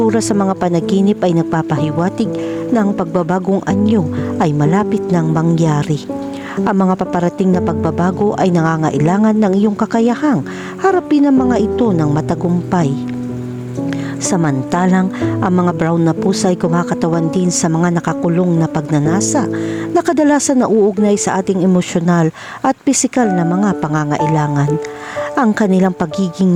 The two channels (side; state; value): both; identical; correlation 1.00